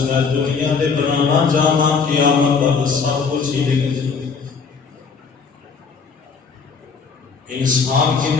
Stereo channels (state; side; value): quieter; right; 5.4 dB